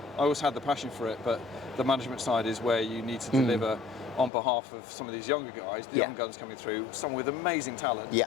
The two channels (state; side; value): drops out; right; at 4.3 s